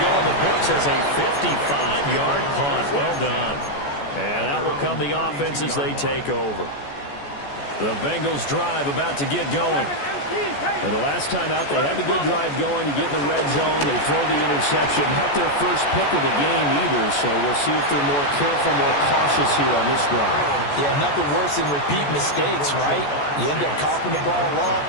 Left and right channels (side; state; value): right; late; 14 ms